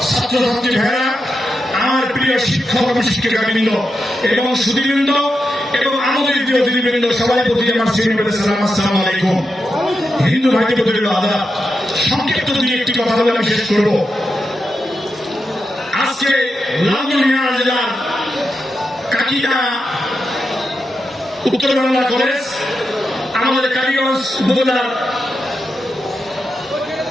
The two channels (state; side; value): normal; both; correlation 0.87